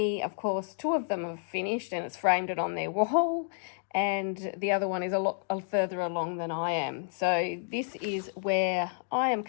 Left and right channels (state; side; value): silent; right; digital silence